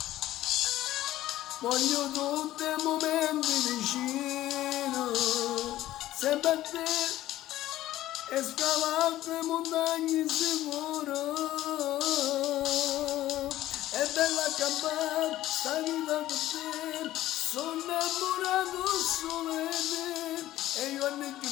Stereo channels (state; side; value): quieter; right; 14.6 dB